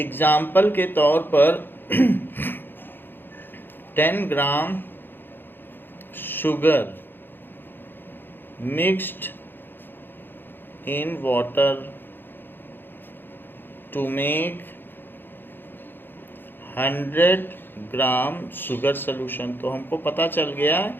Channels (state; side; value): late; right; 0.098 ms